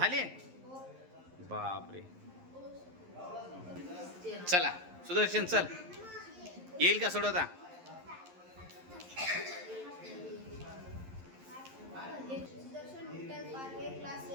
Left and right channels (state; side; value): late; left; 11 ms